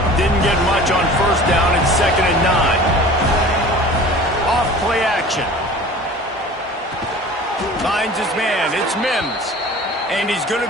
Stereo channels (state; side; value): normal; both; correlation 0.42